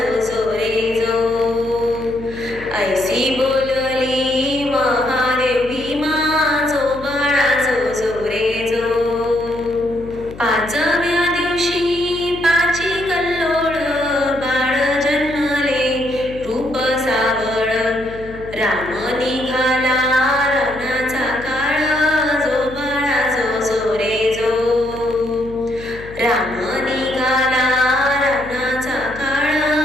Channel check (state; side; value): noise; left; hum, 15 dB below the sound